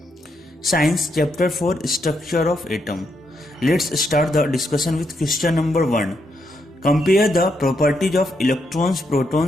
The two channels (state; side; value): normal; both; correlation 0.79